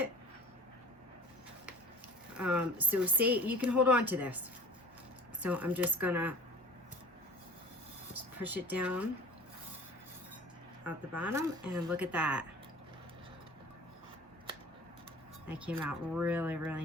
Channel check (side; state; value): both; normal; correlation 0.45